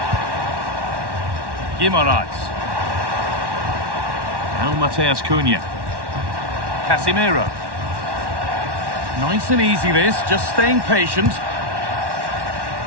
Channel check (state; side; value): late; left; 1.1 ms